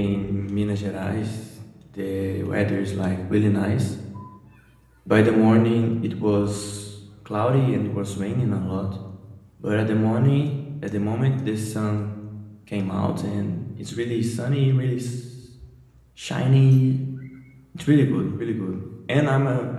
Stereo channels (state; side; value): identical; both; correlation 1.00